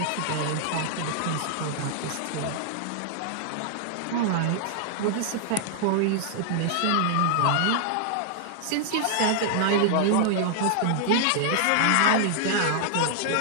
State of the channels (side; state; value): both; different; correlation -0.01